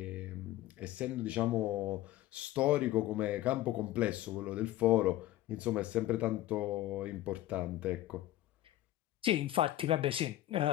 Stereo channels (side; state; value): right; quieter; 14.6 dB